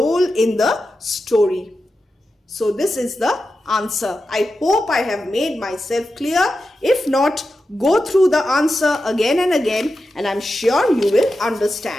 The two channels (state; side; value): normal; both; correlation 0.90